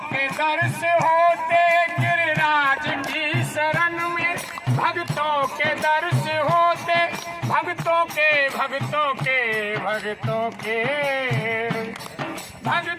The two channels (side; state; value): both; identical; correlation 1.00